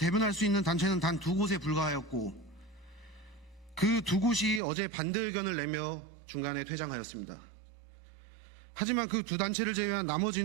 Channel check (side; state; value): left; drops out; at 4.6 s